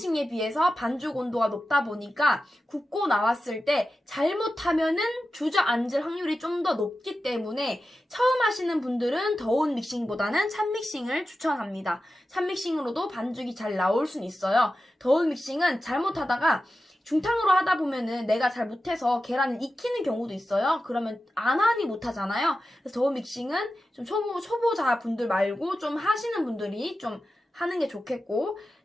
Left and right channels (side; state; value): both; normal; correlation 0.93